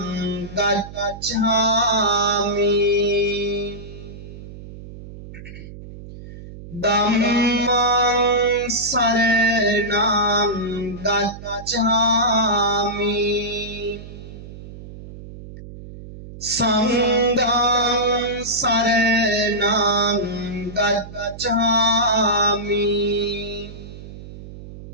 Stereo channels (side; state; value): right; noise; hum, 14 dB below the sound